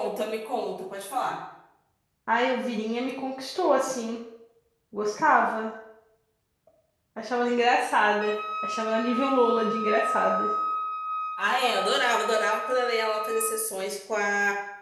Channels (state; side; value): identical; both; correlation 1.00